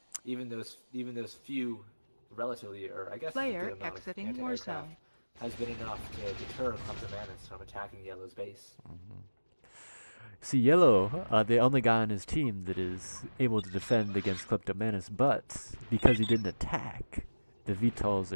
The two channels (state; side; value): inverted; both; correlation -1.00